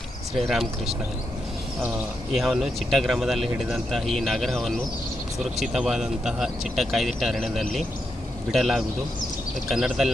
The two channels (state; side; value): normal; both; correlation 0.84